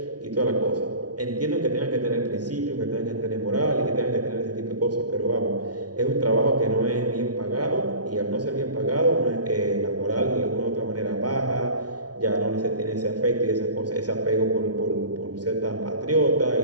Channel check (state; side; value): late; left; 0.69 ms